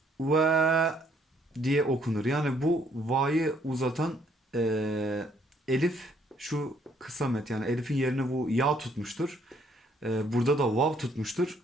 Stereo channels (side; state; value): both; normal; correlation 0.66